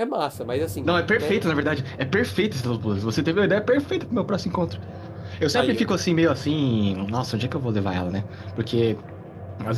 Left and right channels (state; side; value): identical; both; correlation 1.00